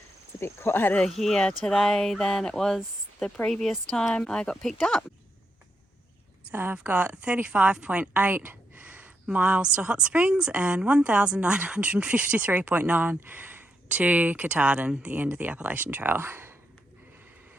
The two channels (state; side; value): normal; both; correlation 0.82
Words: It's a bit quieter here today than it was the previous time I got picked up. So I've got 35.8 miles to Hot Springs and 1,953.9 to Katahdin, the end of the Appalachian Trail.